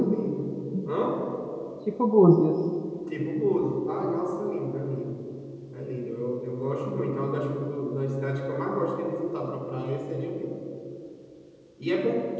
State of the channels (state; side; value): identical; both; correlation 1.00